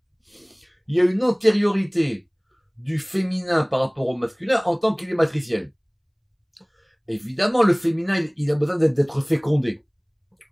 il y a une antériorité du féminin par rapport au masculin en tant qu'il est matriciel. Évidemment, le féminin, il a besoin d'être fécondé.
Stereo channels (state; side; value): identical; both; correlation 1.00